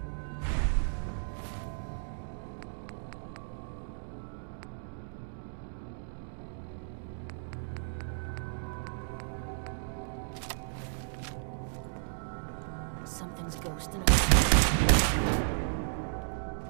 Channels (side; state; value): left; silent; digital silence